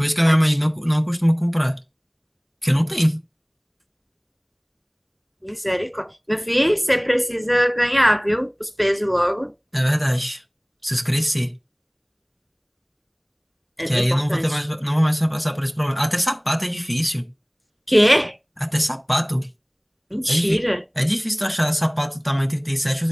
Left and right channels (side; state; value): both; identical; correlation 1.00